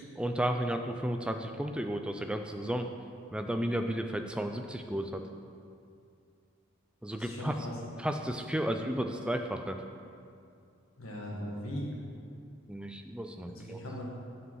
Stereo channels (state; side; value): normal; both; correlation 0.83